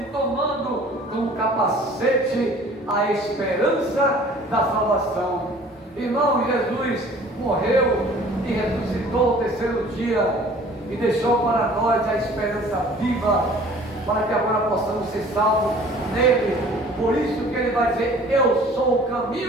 tomando como capacete a esperança da salvação. Irmão, Jesus morreu e ressuscitou o terceiro dia, e deixou para nós a esperança viva, para que agora possamos ser salvos nele. Por isso que ele vai dizer: eu sou o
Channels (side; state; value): both; normal; correlation 0.50